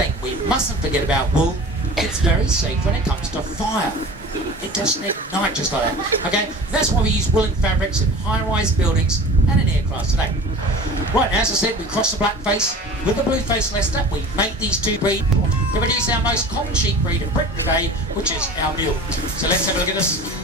we mustn't forget about wool, it's very safe when it comes to fire. It doesn't ignite just like that. Okay, that's why we use woolen fabrics in high-rise buildings and in aircraft today. Right, as I said, we cross the blackface with the blue-faced Leicester. We make these 2 breeds to produce our most common sheep breed in Britain today, which is our mule. So let's have a look at this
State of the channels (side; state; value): both; normal; correlation 0.39